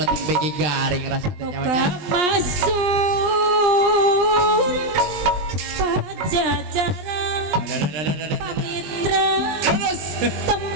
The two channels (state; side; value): late; left; 20 ms